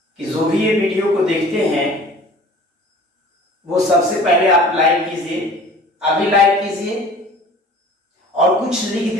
कि जो भी ये वीडियो को देखते हैं वो सबसे पहले आप लाइक कीजिए, अभी लाइक कीजिए और कुछ लिख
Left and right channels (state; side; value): normal; both; correlation 0.46